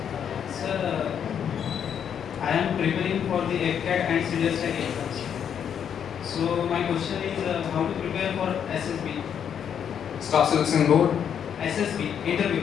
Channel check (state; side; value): quieter; right; 8.3 dB